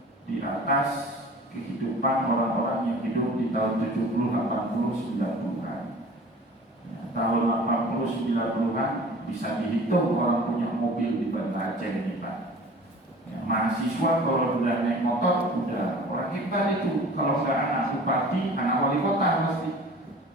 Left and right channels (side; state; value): both; normal; correlation 0.44